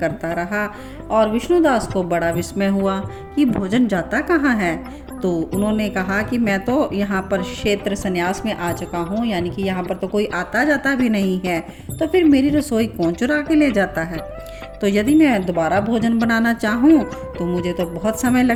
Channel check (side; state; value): both; identical; correlation 1.00